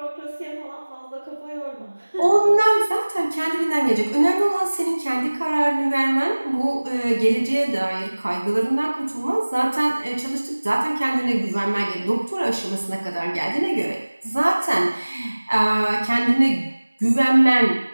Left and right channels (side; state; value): both; inverted; correlation -1.00